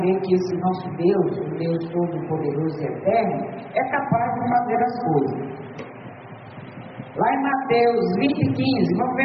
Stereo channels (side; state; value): both; identical; correlation 1.00